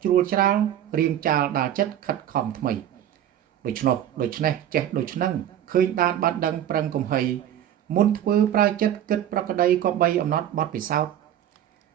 ជ្រួលច្រាលរៀងចាលដាល់ចិត្តខិតខំថ្មីដូច្នេះចេះដូច្នឹងឃើញដានបានដឹងប្រឹងកំហីមុនធ្វើប្រើចិត្តគិតប្រក្តីក៏បីអំណត់បត់ពិសោធន៍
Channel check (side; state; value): left; quieter; 11.0 dB